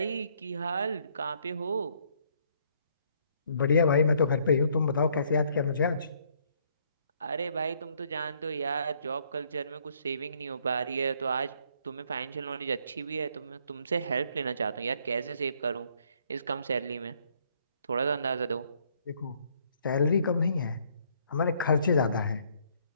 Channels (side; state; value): both; inverted; correlation -0.67